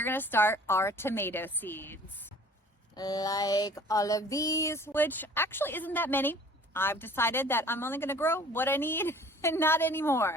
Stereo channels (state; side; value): normal; both; correlation 0.49